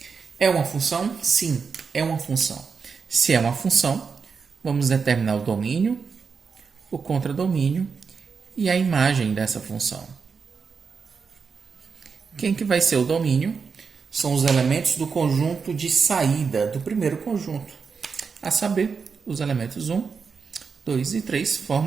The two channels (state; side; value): quieter; left; 5.5 dB